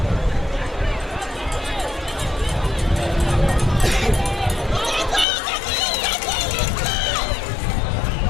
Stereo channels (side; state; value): right; drops out; at 5.2 s